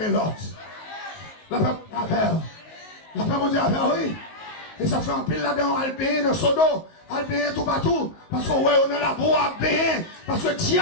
l'autre. La peuple affaire. La paix mon Dieu, oui. Et ça fait un pile là-dedans, Albéen, dans Sodo, Albéen tout partout. Parce qu'on on est là pour Albéen. Parce que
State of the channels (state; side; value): late; right; 19 ms